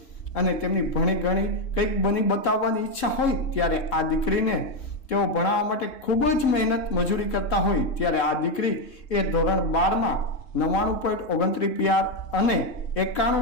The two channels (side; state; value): right; late; 3.5 ms